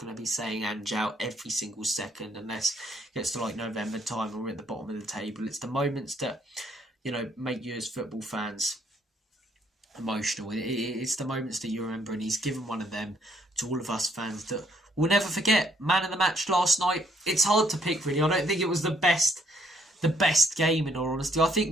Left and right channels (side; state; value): both; normal; correlation 0.68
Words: to be saying Ange out every single second unless it gets to like November time and we're at the bottom of the table. It's the moments that, make you as football fans emotional. It's the moments that you remember, and he's given one of them to all of us fans that we'll never forget. Man of the match last night. It's hard to pick, really. I don't think it was the best game, in all honesty. I